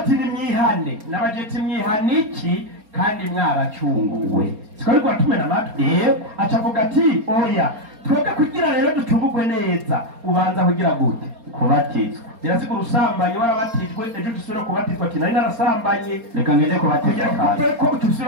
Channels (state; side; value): late; left; 4.3 ms